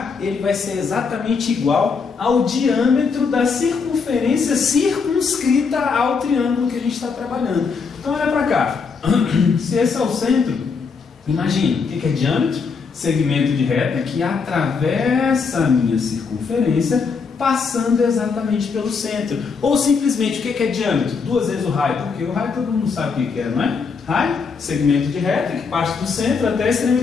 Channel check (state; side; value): quieter; right; 5.3 dB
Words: ele vai ser exatamente igual ao diâmetro da circunferência circunscrita ao triângulo que a gente está trabalhando. Então olha para cá, se esse é o centro, imagina, o que é diâmetro? Segmento de reta que atravessa a minha circunferência, passando exatamente pelo centro. Ou simplesmente, o que é diâmetro? 2 vezes o raio, porque o raio todo mundo sabe o que é, não é? Raio, segmento de reta que parte do centro até a